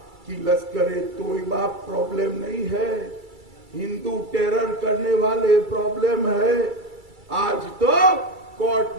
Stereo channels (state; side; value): late; left; 2.3 ms